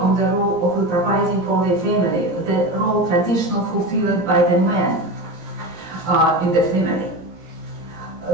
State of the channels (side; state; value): left; late; 17 ms